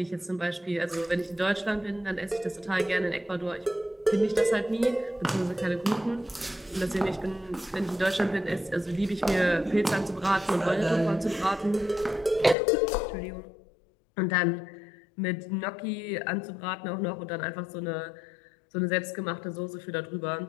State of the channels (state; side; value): drops out; right; at 12.6 s